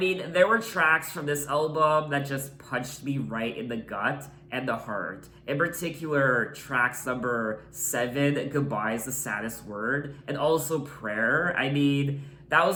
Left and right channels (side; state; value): both; identical; correlation 1.00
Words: there were tracks from this album that just punched me right in the gut and the heart. In particular, tracks number 7, Goodbye is the Saddest Word, and also Prayer. I mean, that